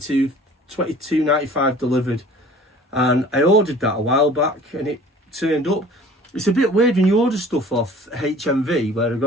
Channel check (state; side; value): normal; both; correlation 0.47